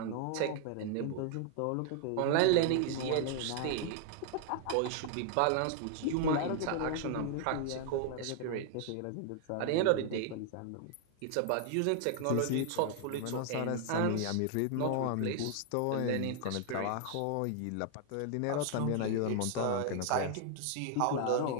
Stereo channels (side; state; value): both; different; correlation 0.00